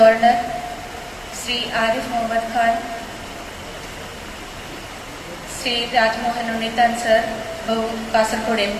ശ്രീ ആരിഫ് മുഹമ്മദ് Khan, Shri Rajmohan Unnithan sir, Kasaragod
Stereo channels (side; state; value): both; identical; correlation 1.00